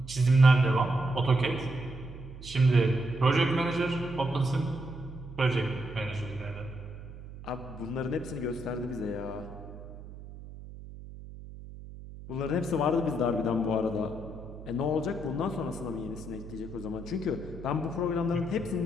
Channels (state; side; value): noise; right; hum, 14 dB below the sound